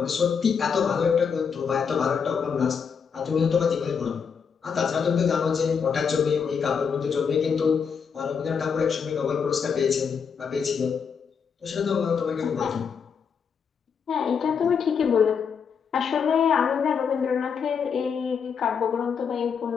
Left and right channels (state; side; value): quieter; right; 6.5 dB